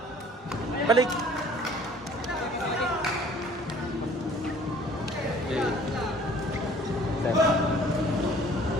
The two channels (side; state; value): both; normal; correlation 0.52